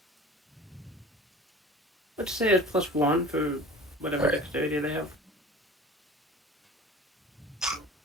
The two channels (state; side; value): normal; both; correlation 0.40